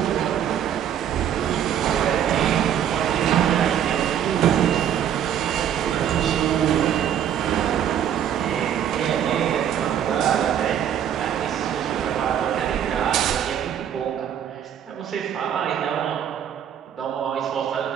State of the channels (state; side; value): quieter; left; 9.6 dB